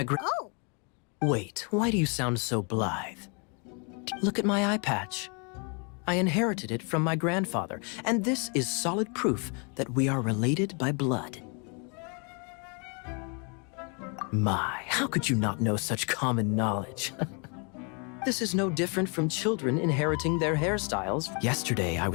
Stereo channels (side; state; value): right; quieter; 35.8 dB